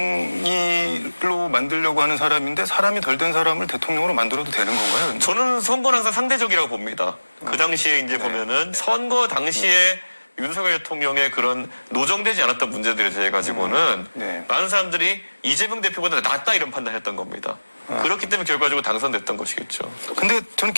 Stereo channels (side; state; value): both; inverted; correlation -1.00